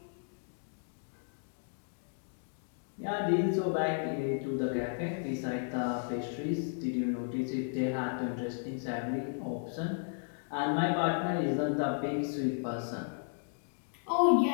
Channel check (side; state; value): right; silent; digital silence